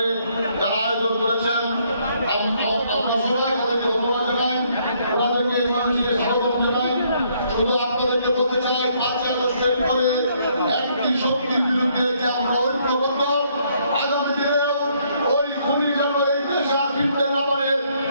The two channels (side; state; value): both; inverted; correlation -0.69